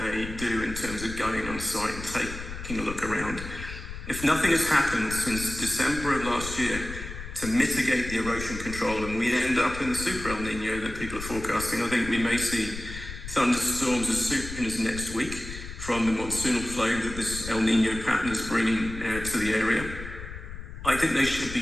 do in terms of going on site and taking a look around. If nothing has happened since December of last year to mitigate the erosion control and we end up in the super El Nino that people are forecasting, I think we may see thunderstorms as soon as next week from the monsoonal flow that this El Nino pattern is bringing to the area. I think they should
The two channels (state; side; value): noise; left; rumble, 10 dB below the sound